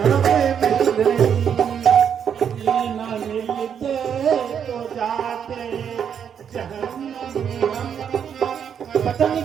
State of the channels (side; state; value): left; quieter; 8.0 dB